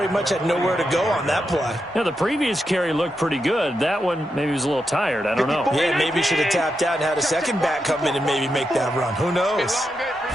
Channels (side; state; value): both; normal; correlation 0.86